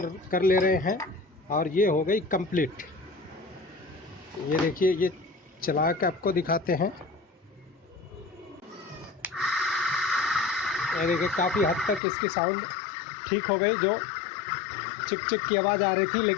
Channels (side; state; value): right; drops out; at 12.0 s